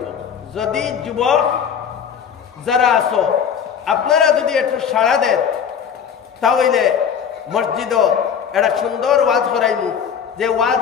যদি যুবক যারা আছো আপনারা যদি একটু সাড়া দেন তাহলে মসজিদও একটা সুন্দর ওয়াজ করাইমু, যে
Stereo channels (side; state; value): right; quieter; 7.6 dB